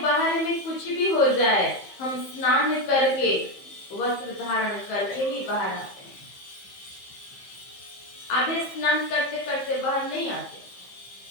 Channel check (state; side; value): late; right; 15 ms